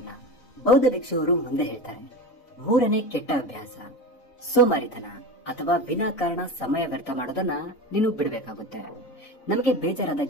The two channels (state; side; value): late; right; 4.0 ms